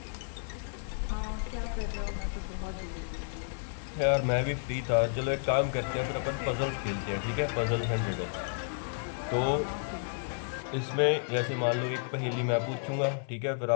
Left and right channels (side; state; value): right; silent; 57 dB below the other